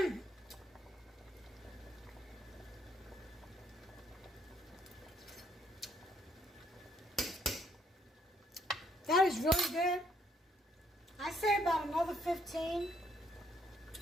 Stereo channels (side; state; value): both; normal; correlation 0.69